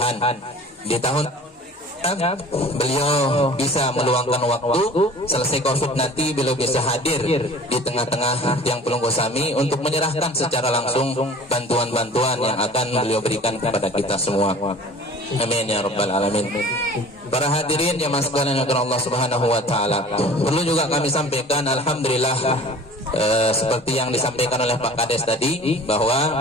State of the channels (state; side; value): normal; both; correlation 0.44